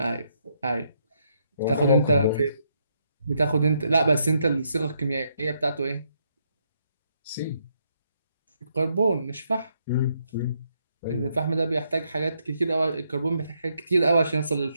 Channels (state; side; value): inverted; both; correlation -0.76